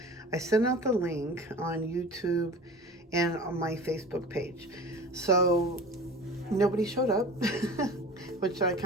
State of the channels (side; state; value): both; normal; correlation 0.38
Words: I sent out the link on YouTube and on my Facebook page. So nobody showed up, which I